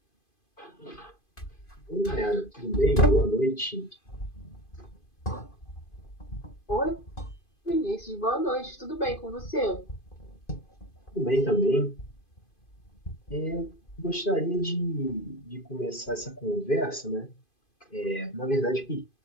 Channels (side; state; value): right; late; 2.5 ms